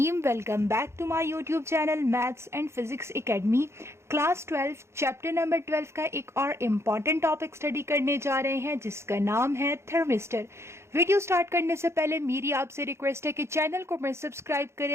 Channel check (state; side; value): late; left; 0.13 ms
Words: Welcome back to my YouTube channel maths and physics academy. Class 12 chapter number 12 का एक और important topic study करने जा रहे हैं जिसका नाम है थर्मिस्टर। वीडियो स्टार्ट करने से पहले मेरी आपसे रिक्वेस्ट है कि चैनल को मैं सब्सक्राइब